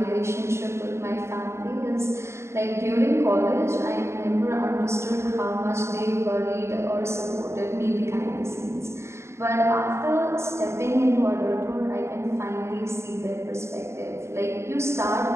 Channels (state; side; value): late; left; 0.13 ms